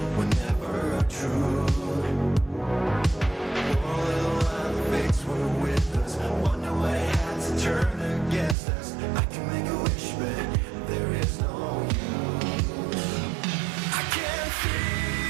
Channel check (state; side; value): drops out; left; at 8.6 s